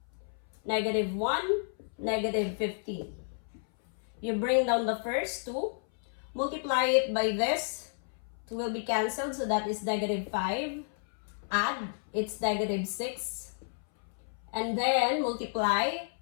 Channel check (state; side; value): silent; right; 57 dB below the other